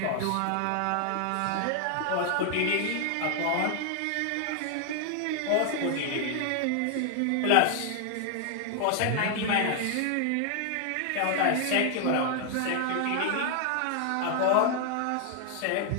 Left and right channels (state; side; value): different; both; correlation 0.00